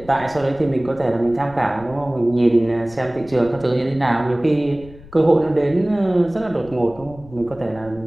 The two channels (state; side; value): noise; left; rumble, 20 dB below the sound